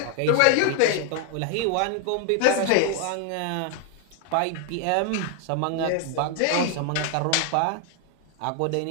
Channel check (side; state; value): both; different; correlation 0.00